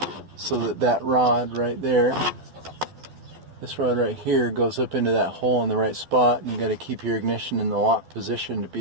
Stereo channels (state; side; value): late; left; 12 ms